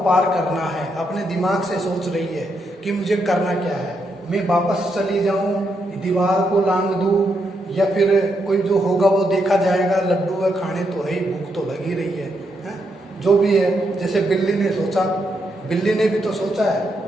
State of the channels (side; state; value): both; normal; correlation 0.80